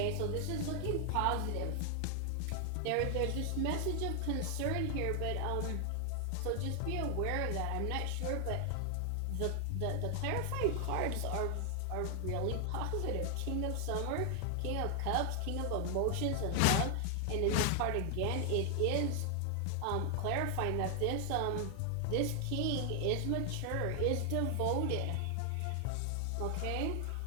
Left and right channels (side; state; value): both; different; correlation 0.00